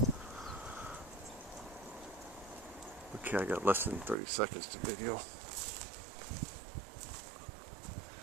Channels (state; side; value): drops out; left; at 4.2 s